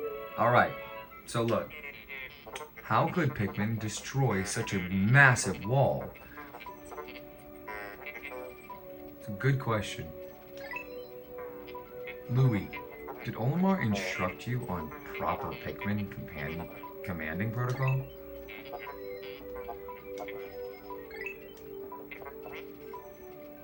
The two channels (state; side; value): identical; both; correlation 1.00